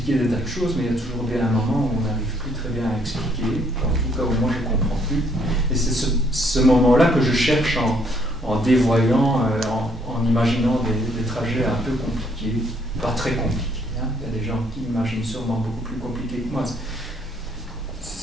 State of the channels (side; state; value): both; normal; correlation 0.67